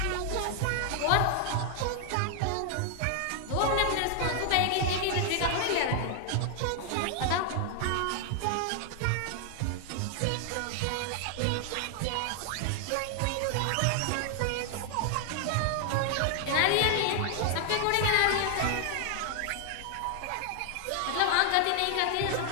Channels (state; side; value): different; both; correlation 0.00